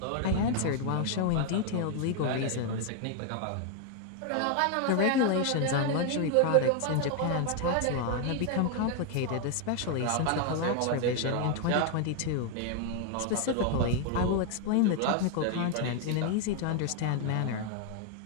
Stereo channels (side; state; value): both; different; correlation 0.00